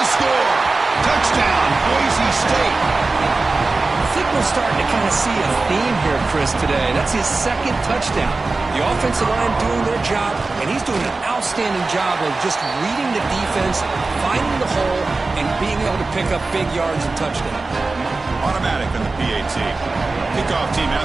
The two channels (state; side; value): quieter; left; 3.6 dB